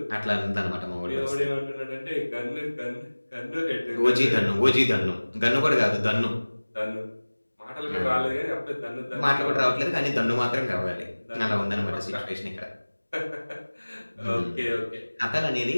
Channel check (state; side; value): inverted; both; correlation -1.00